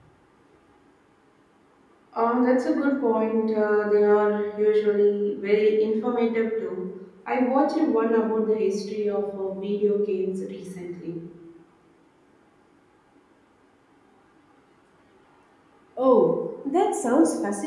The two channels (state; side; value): identical; both; correlation 1.00